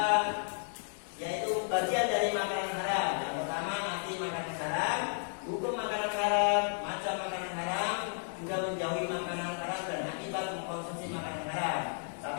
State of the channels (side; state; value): right; silent; digital silence